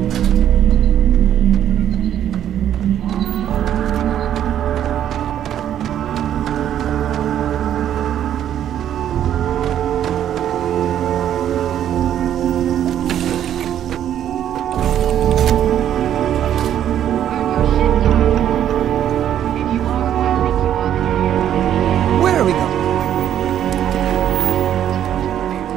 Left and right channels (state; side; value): quieter; left; 10.5 dB